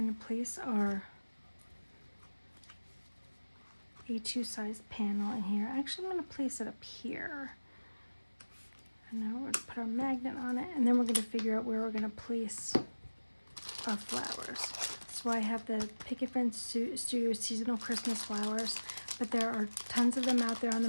to place our A2 sized panel in here. Actually, I'm going to place it up here. And now we're going to put our magnet on it, and then we're going to figure out where we're going to place our flowers. So I have the Picket Fence Studio Seasonal Christmas Flowers, but there are tons of them out there on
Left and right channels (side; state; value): both; inverted; correlation -1.00